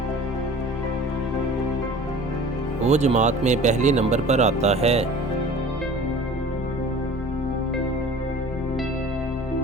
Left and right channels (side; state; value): both; normal; correlation 0.43